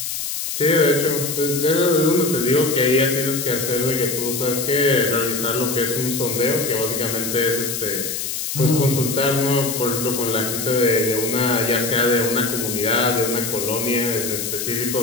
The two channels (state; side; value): noise; left; hiss, 4 dB below the sound